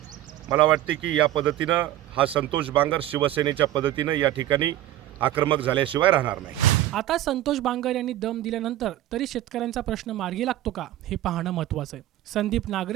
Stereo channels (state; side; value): quieter; left; 13.6 dB